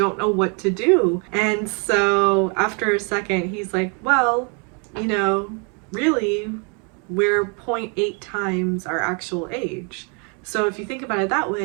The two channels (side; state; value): left; quieter; 36.2 dB